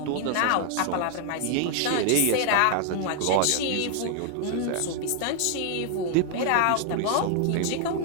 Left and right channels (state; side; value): different; both; correlation 0.00